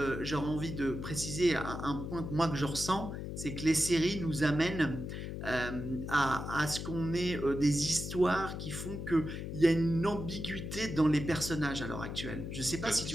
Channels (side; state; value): left; noise; hum, 6 dB below the sound